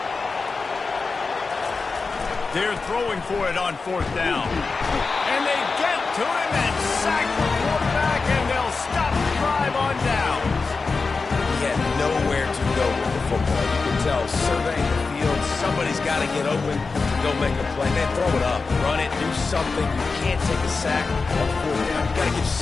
They're throwing for it on 4th down. And they get to him and sack the quarterback, and they'll stop the drive on down. He had nowhere to go with the football. You can tell, surveying the field, somebody's got to get open to go make a play. Man, throw it up, run it, do something. You can't take a sack on 4th down. You got to give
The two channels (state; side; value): quieter; right; 4.3 dB